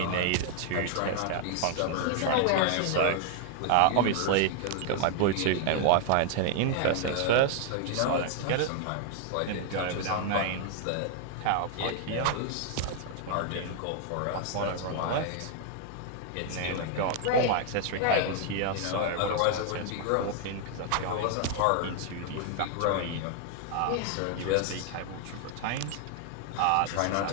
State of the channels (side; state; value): both; different; correlation 0.00